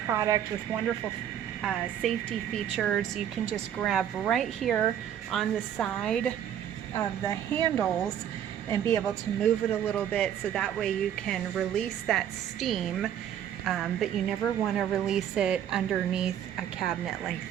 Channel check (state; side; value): quieter; left; 9.9 dB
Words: with wonderful safety features. You can just grab right here on the side of the handles and be able to move it a little bit, so that way you can release that steam, but you never want to release it underneath a cabinet